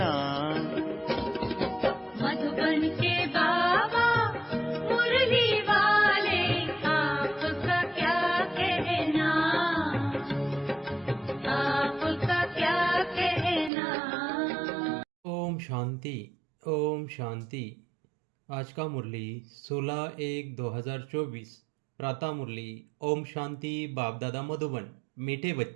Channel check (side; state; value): left; drops out; at 13.7 s